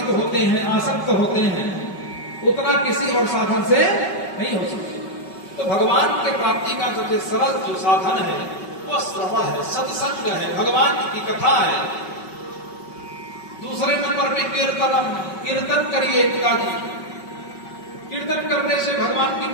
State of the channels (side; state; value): right; late; 5.3 ms